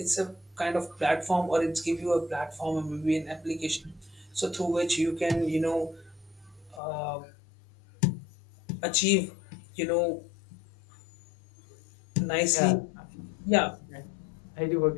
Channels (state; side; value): drops out; right; at 6.8 s